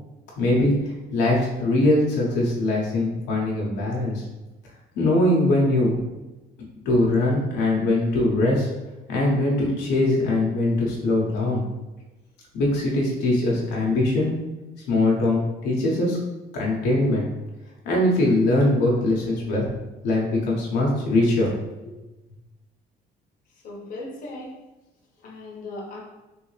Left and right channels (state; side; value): normal; both; correlation 0.63